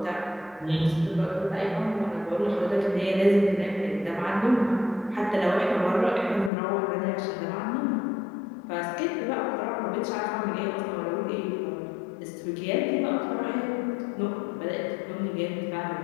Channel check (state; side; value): drops out; right; at 6.5 s